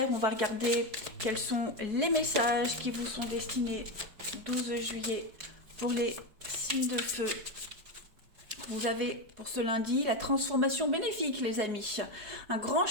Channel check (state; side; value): late; left; 5.1 ms